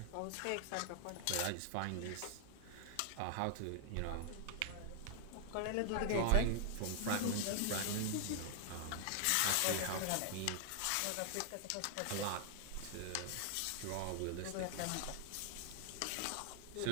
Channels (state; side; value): different; both; correlation 0.00